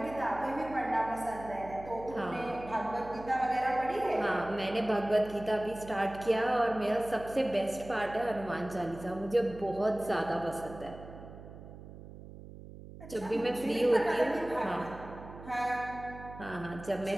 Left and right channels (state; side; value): noise; right; hum, 15 dB below the sound